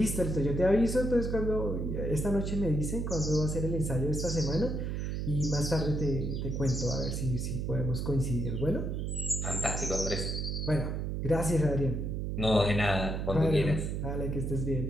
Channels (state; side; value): noise; right; hum, 2 dB below the sound